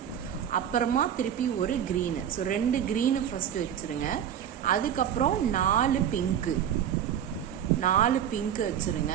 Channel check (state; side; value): quieter; left; 9.4 dB